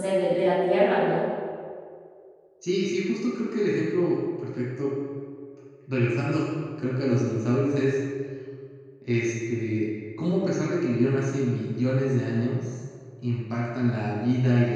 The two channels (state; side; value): identical; both; correlation 1.00